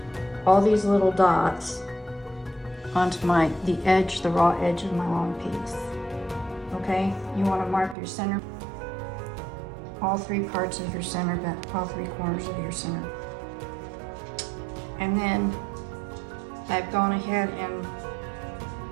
all these little dots onto the edge, the raw edge of my long piece. Okay, you want to mark your center, all three parts of your center, but all three corners of your center. And then I've gone ahead and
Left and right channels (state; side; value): drops out; left; at 8.0 s